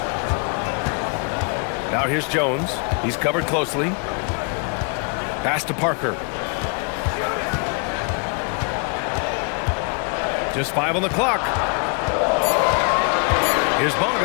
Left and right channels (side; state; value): right; quieter; 38.0 dB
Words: Now here's Jones. He's covered closely. Pass to Parker. Just 5 on the clock. Here's